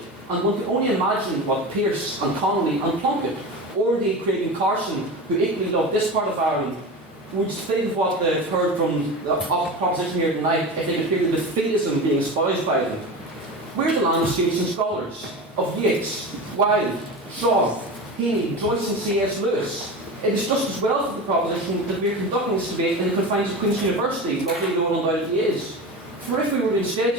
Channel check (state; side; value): normal; both; correlation 0.28